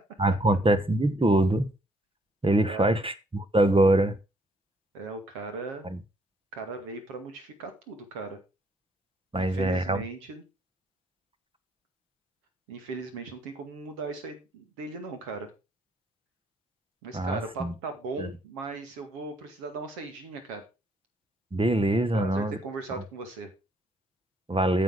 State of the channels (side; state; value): both; normal; correlation 0.69